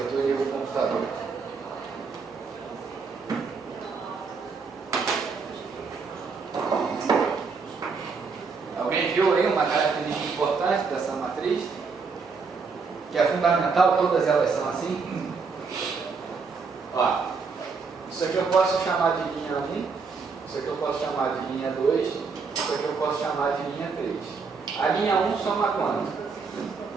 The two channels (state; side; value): quieter; left; 4.9 dB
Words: e ligo o computador? Alguém viu aí uma característica importante dessa matriz? Que é fundamental, todas elas são assim? Ó, isso aqui eu posso chamar de linha 1, isso aqui eu posso chamar de linha 2, isso aqui eu posso chamar de linha 3. A linha 1 soma quanto?